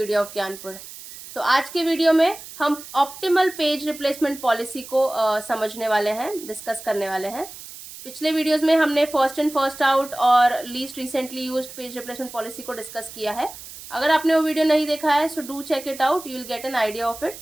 of Gyanpur. तो आज के वीडियो में हम ऑप्टिमल पेज रिप्लेसमेंट पॉलिसी को समझने वाले हैं, डिस्कस करने वाले हैं। पिछले वीडियोस में हमने फर्स्ट इन फर्स्ट आउट और least recently used page replacement policy को डिस्कस किया है। अगर आपने वो वीडियो नहीं देखा है so do check it out, you will get an idea of it.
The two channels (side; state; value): right; noise; hiss, 15 dB below the sound